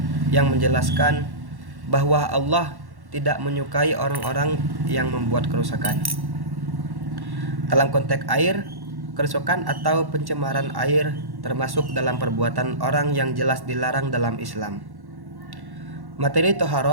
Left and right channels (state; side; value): late; left; 1.1 ms